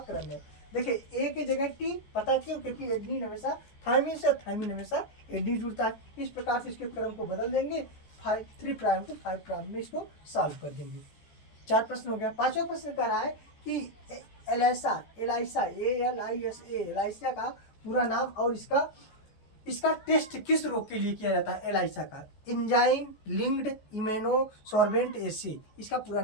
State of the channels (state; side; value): late; right; 14 ms